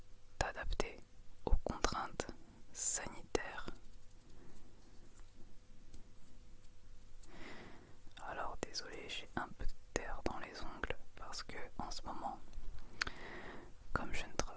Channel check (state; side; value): identical; both; correlation 1.00